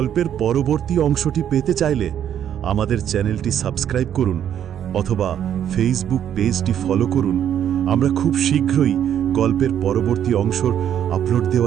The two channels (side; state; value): left; quieter; 9.8 dB